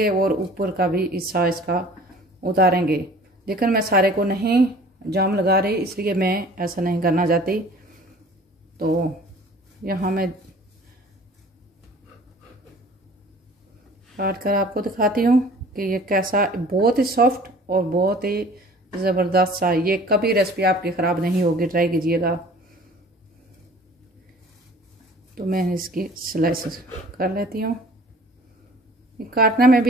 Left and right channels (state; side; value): normal; both; correlation 0.48